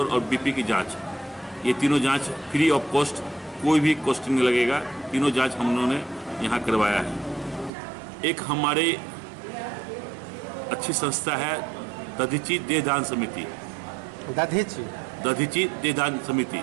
और बीपी की जांच, ये तीनों जांच फ्री ऑफ कॉस्ट, कोई भी कॉस्ट नहीं लगेगा। तीनों जांच हम लोगों ने यहाँ करवाया है। एक हमारे अच्छी संस्था है दधीची देहदान समिति। दधीची देहदान समिति,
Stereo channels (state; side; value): drops out; left; at 7.7 s